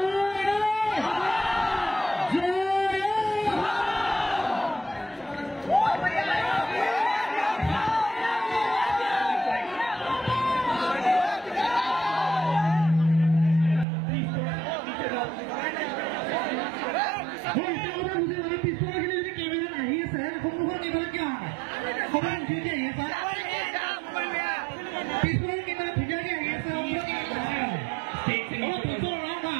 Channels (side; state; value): left; drops out; at 13.9 s